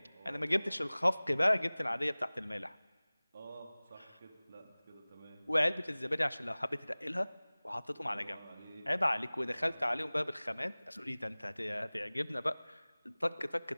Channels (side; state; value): both; inverted; correlation -1.00